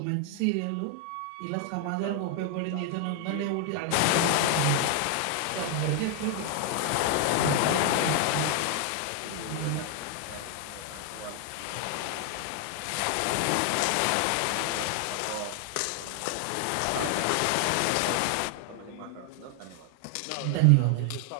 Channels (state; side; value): different; both; correlation 0.00